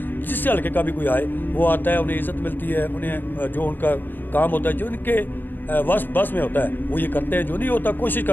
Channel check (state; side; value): late; right; 0.092 ms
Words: جس سے حلقے کا بھی کوئی آئے وہ آتا ہے، انہیں عزت ملتی ہے، انہیں جو ان کا کام ہوتا ہے، جو ان کے بس میں ہوتا ہے وہ یہ کرتے ہیں، جو نہیں ہوتا کوشش